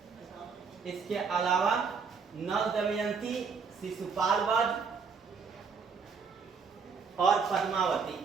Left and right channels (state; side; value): quieter; left; 5.5 dB